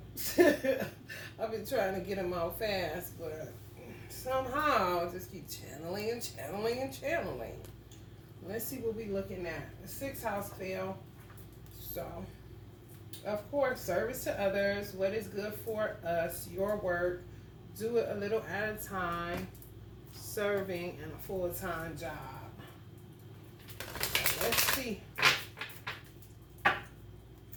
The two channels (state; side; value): identical; both; correlation 1.00